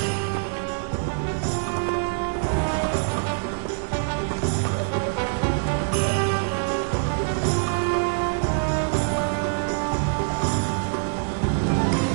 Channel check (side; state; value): left; silent; digital silence